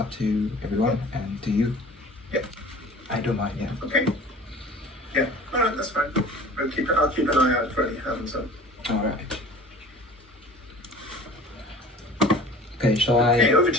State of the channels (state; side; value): normal; both; correlation 0.44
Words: to everyone and to you. Yeah. I don't mind, yeah. Okay. Yeah, all right, that's fine. I'll keep an eye out for any hands up. All right. Okay, shall I? Okay, over